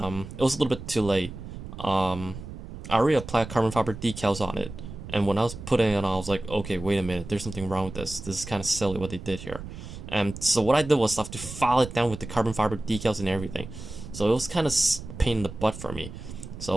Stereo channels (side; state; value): right; noise; rumble, 11 dB below the sound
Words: was a little bit too late. I already applied carbon fiber decals on it. And when I was putting it on, I was like, okay, wait a minute, there's something wrong with this. This is kind of silly what they did here. And so what I did was I have to file it down with the carbon fiber decals and everything. So it was kind of pain in the butt for me.